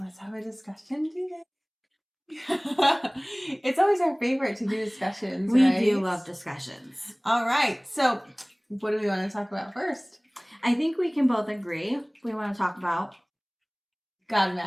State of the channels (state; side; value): identical; both; correlation 1.00